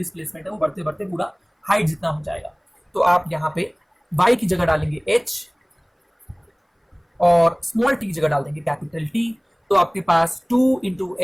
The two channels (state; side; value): identical; both; correlation 1.00